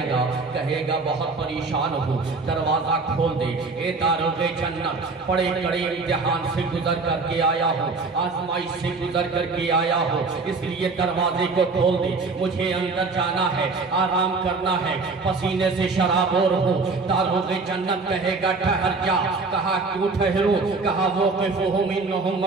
گا کہے گا بہت پریشان ہوں، دروازہ کھول دے، اے داروغ جنت، بڑے کڑے امتحان سے گزر کر کے آیا ہوں، آزمائش سے گزر کر کے آیا ہوں، اس لیے دروازے کو کھول دے، مجھے اندر جانا ہے، آرام کرنا ہے، پسینے سے شرابور ہوں۔ داروغ جنت کہے گا ٹھہر جا، کہا کیوں ٹھہرو؟ کہا وقفہم انہم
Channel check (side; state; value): left; quieter; 4.0 dB